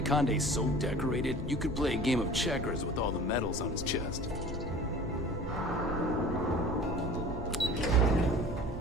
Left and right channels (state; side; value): normal; both; correlation 0.42